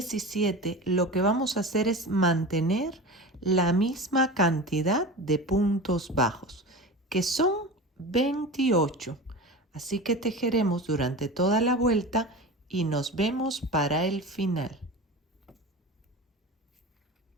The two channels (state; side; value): normal; both; correlation 0.31